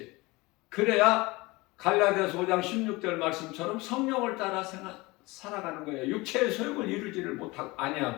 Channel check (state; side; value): quieter; right; 22.8 dB